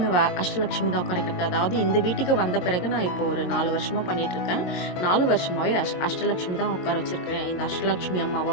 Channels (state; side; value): late; right; 22 ms